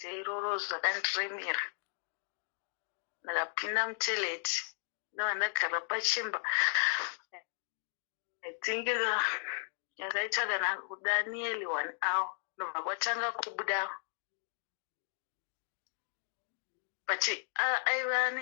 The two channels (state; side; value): silent; right; digital silence